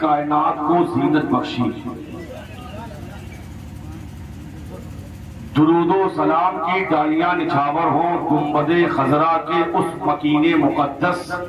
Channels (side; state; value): both; identical; correlation 1.00